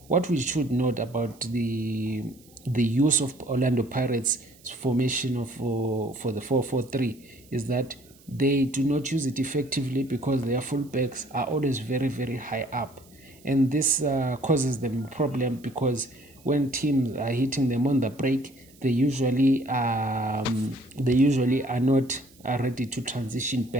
what we should note about the use of Orlando Pirates formation for the 4-4-3 is that they do not use it effectively, because their fullbacks are always very high up, and this causes them a problem, because when teams are hitting them on the break, they usually are not ready to transition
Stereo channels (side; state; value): right; noise; hiss, 27 dB below the sound